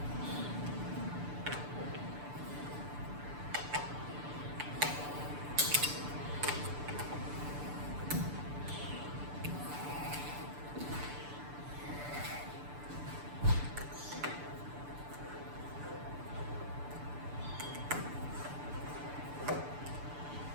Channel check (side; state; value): left; late; 6.8 ms